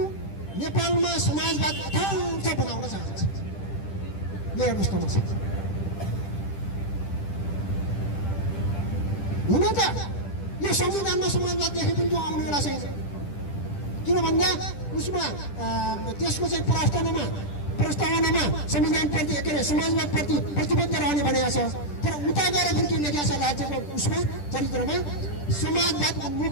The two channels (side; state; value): right; late; 10 ms